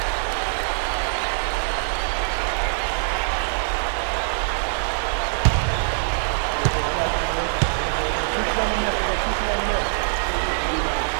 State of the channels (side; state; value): left; silent; digital silence